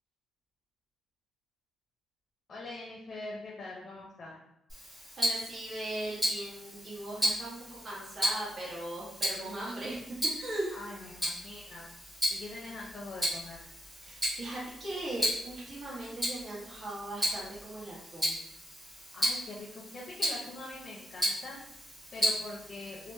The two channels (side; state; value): both; normal; correlation 0.82